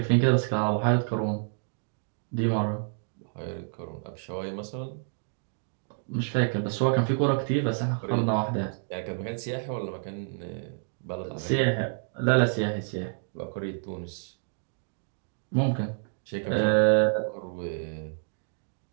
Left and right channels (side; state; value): left; silent; digital silence